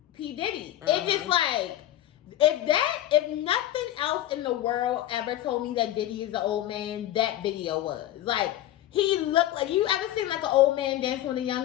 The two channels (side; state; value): right; quieter; 13.3 dB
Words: P. Diddy. It's just like, if nothing else in the world ever told me that Diddy is an old man, that video was. Like, he looked like, you ever seen like an old man dancing with a